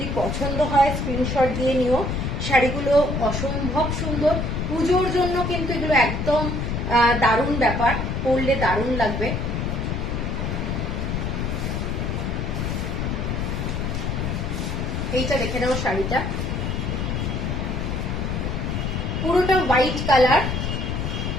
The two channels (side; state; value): left; noise; rumble, 1 dB below the sound